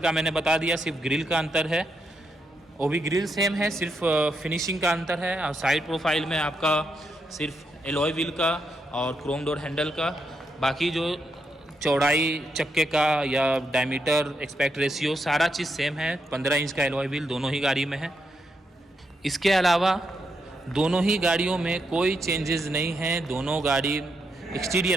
का मैंने बता दिया, सिर्फ ग्रिल का अंतर है, वो भी ग्रिल सेम है, सिर्फ फिनिशिंग का अंतर है। और साइड प्रोफाइल में आपका सिर्फ एलॉय व्हील का और क्रोम डोर हैंडल का, बाकी जो चौड़ाई चक्के का या डायमीटर एक्सपेक्ट रेशियो सारा चीज़ सेम है। 15 इंच का एलॉय व्हील दोनों ही गाड़ी में है। इसके अलावा दोनों ही गाड़ियों में कोई चेंजेस नहीं है। दोनों गाड़ी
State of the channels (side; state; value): both; normal; correlation 0.81